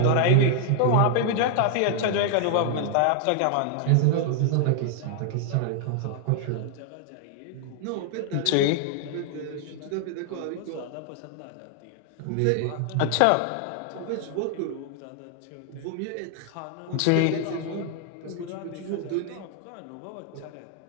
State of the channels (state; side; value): different; both; correlation 0.00